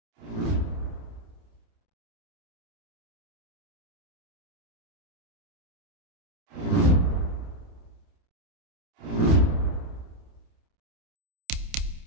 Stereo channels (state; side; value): late; left; 28 ms